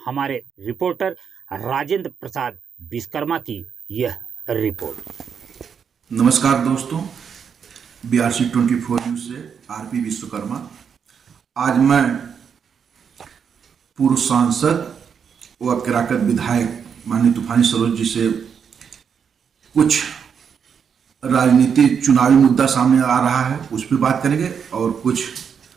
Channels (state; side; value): quieter; left; 7.0 dB